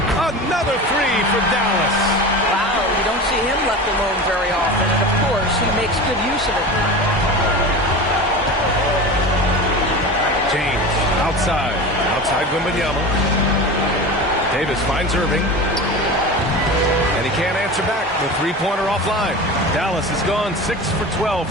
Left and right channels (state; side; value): normal; both; correlation 0.30